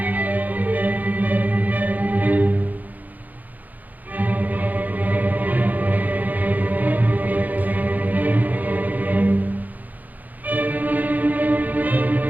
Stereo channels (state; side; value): late; left; 0.081 ms